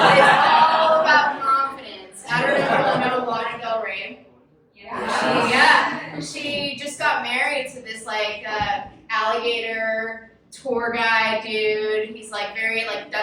about confidence. I don't know if you know Lana Del Rey. She just got married to this like alligator tour guide dude. He's like very like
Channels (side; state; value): both; identical; correlation 1.00